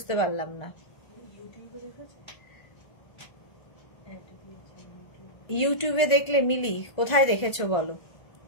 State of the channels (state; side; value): late; right; 1.5 ms